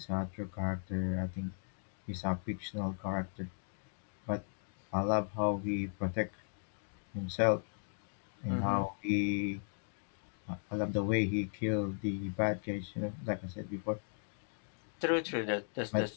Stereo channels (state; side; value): silent; right; digital silence